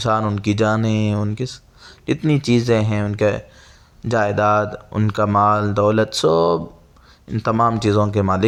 ان کی جانیں، ان کی جتنی چیزیں ہیں، ان کے جائیداد، ان کا مال دولت، سب ان تمام چیزوں کے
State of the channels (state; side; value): identical; both; correlation 1.00